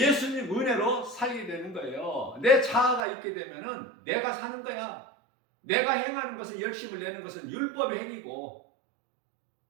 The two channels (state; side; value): drops out; left; at 3.0 s